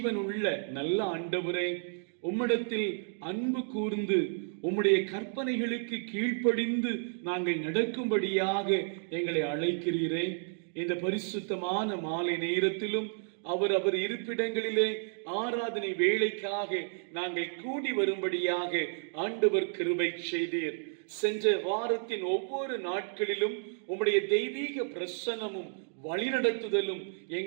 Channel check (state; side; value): silent; left; digital silence